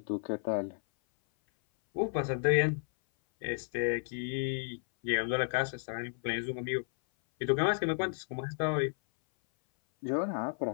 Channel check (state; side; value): silent; right; 56 dB below the other